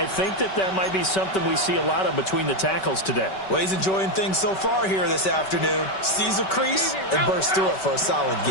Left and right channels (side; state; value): right; late; 5.2 ms